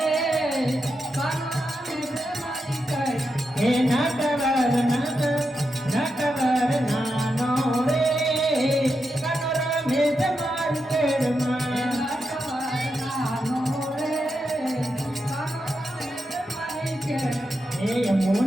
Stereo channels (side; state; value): both; normal; correlation 0.86